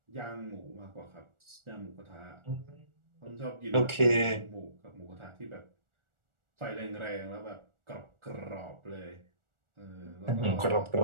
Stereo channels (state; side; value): late; left; 1.4 ms